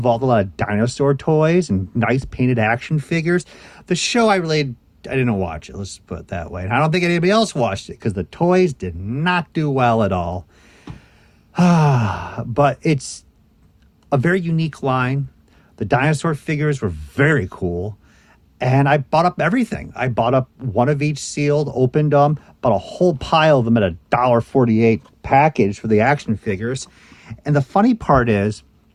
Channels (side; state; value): both; identical; correlation 1.00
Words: a lot of dinosaur toys and nice painted action figures. The show I didn't watch it, let's put it that way. And I don't think anybody else watched it because the toys did not do well at all. But it's a very unique line. The dinosaur figures were very cool. And I bought up everything. I bought up one of each sealed, opened them, bought a whole pile of them at $1.48 package for the action figures. And the funny part is,